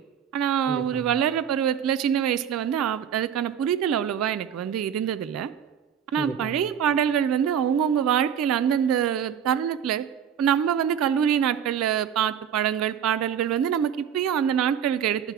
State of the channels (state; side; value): quieter; left; 8.6 dB